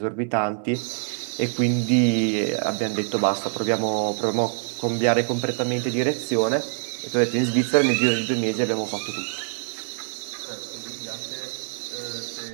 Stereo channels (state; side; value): silent; left; 62 dB below the other